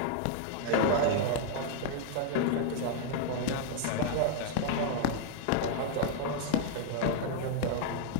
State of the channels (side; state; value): both; different; correlation -0.01